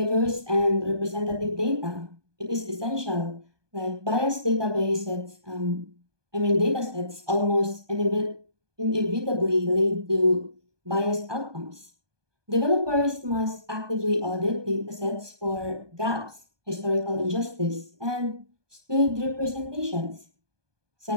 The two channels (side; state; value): left; late; 1.2 ms